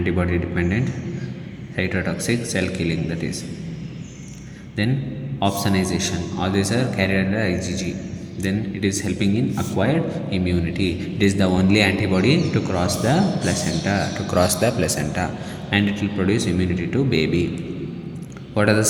dependent cytotoxic cell killing, that is. Then opsonization, all these are carried under IgG. Then it is helping in acquired immunity. It is the only antibody to cross the placenta, and it will produce immunity to baby. What are the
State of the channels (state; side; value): identical; both; correlation 1.00